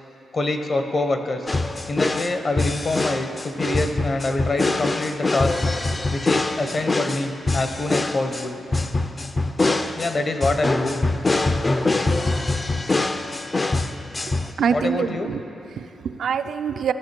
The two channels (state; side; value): normal; both; correlation 0.90